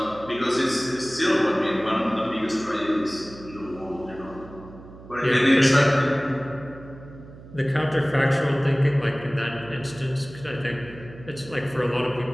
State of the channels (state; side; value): noise; right; hum, 18 dB below the sound